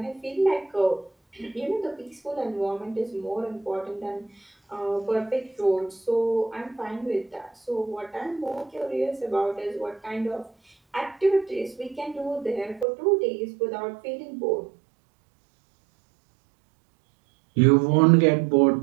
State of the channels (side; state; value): left; drops out; at 12.9 s